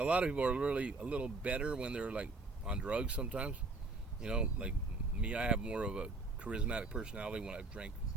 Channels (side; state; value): left; quieter; 3.5 dB